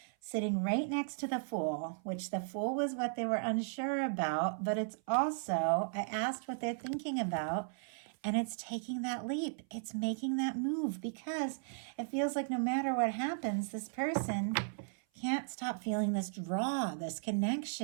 sitting right next to the Fool, which the Fool was what they were unsure about, but it's also, I asked what they're thinking about, and it's taking that leap. It's making that move because it feels like no matter what happens, this person can't stop feeling this draw, this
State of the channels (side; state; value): left; silent; 54 dB below the other